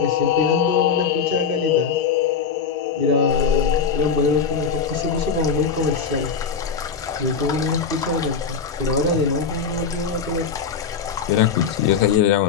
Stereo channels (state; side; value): quieter; right; 6.2 dB